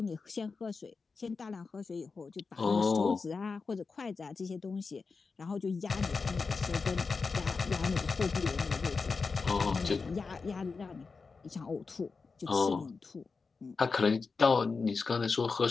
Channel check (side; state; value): right; quieter; 4.6 dB